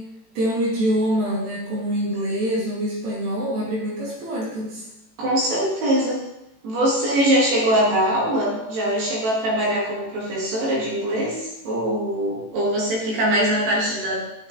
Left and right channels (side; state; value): left; late; 18 ms